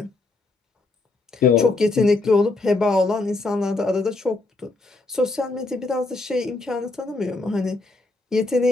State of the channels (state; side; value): quieter; right; 3.2 dB